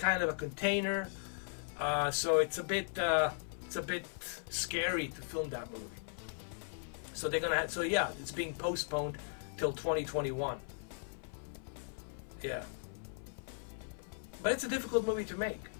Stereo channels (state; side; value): silent; right; 53 dB below the other